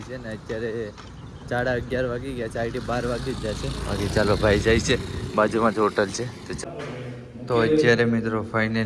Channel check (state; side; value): identical; both; correlation 1.00